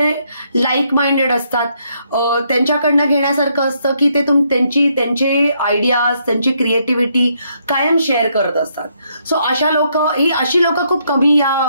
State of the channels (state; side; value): inverted; both; correlation -0.74